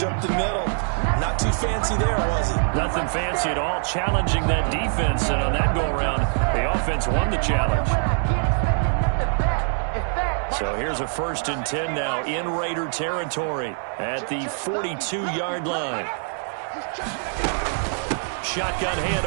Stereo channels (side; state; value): left; silent; 62 dB below the other